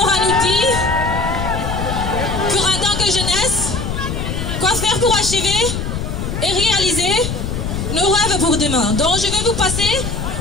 à nous dire pour en tant que jeunesse, quoi faire pour achever et réaliser nos rêves pour demain. Donc, je vais vous passer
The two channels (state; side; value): noise; left; rumble, 4 dB below the sound